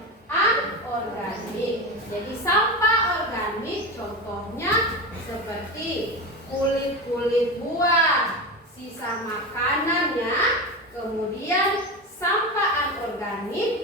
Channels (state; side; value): normal; both; correlation 0.22